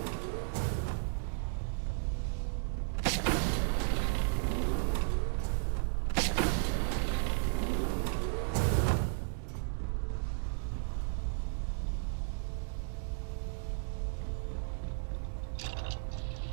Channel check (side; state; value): left; silent; digital silence